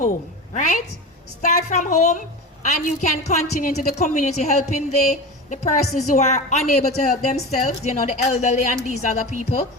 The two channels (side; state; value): both; normal; correlation 0.27